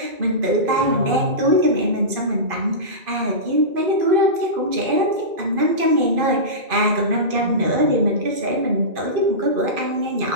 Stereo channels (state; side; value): late; left; 2.5 ms